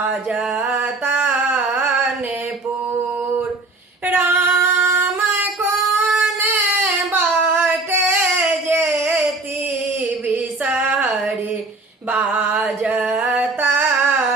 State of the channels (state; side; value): quieter; left; 3.3 dB